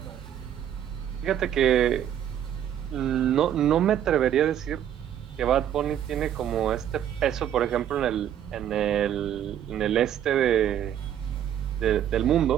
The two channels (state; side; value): quieter; left; 10.3 dB